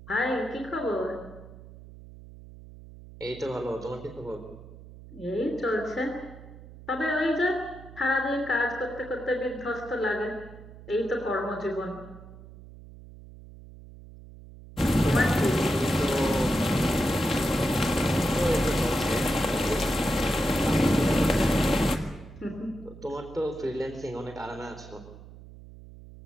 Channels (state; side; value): noise; right; hum, 18 dB below the sound